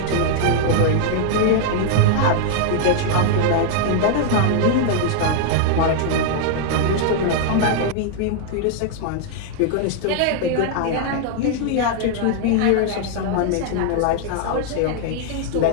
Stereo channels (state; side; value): different; both; correlation 0.00